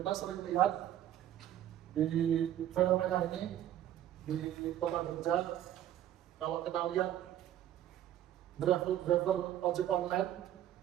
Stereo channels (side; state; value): left; quieter; 11.9 dB